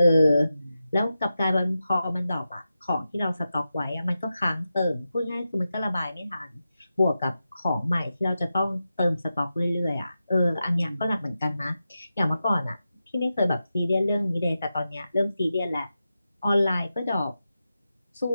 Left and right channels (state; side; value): inverted; both; correlation -0.91